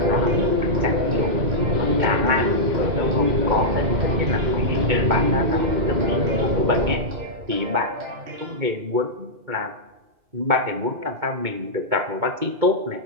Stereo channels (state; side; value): late; left; 2.2 ms